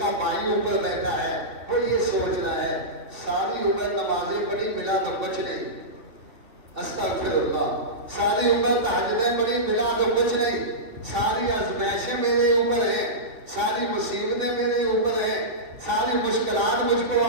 بھائی اوپر بیٹھا ہے، وہ یہ سوچ رہا ہے ساری عمر نمازیں پڑھی، ملا تو کچھ نہیں، استغفر اللہ، ساری عمر تہجدیں پڑھی، ملا تو کچھ نہیں، ساری آزمائشیں میرے اوپر ہیں، ساری مصیبتیں میرے اوپر ہیں، ساری مشکلات مجھ کو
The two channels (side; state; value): left; late; 3.4 ms